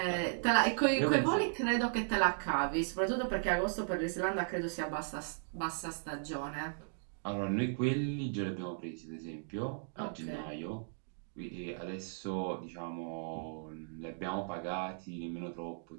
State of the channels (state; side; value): silent; left; digital silence